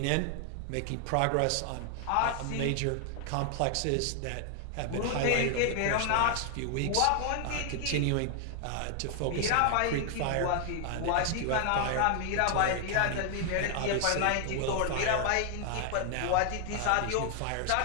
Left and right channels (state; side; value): different; both; correlation 0.00